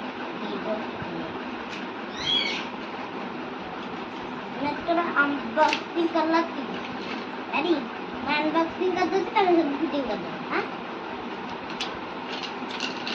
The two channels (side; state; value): both; identical; correlation 1.00